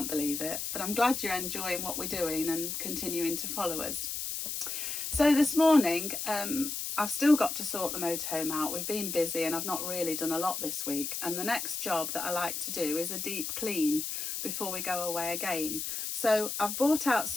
believe it. But I'm glad you're enjoying what we're doing and continuing to follow us. So this morning, I've still got to sort the motorhome out. We've been busy and I've not really done a lot this week. And the next job that I like to do is a deep clean before we go away again. So I've brought out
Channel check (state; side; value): noise; left; hiss, 4 dB below the sound